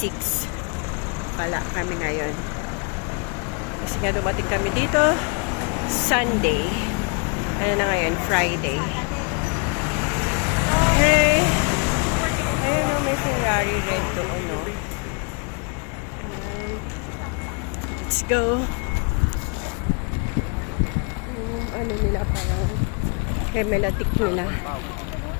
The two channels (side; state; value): right; quieter; 35.0 dB